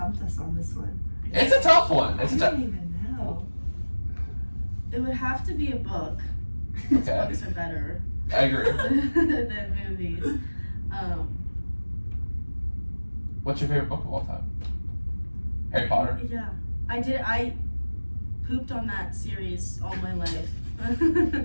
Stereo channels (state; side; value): inverted; both; correlation -1.00